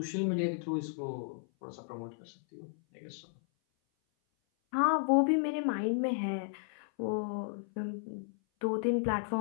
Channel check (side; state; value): right; silent; 55 dB below the other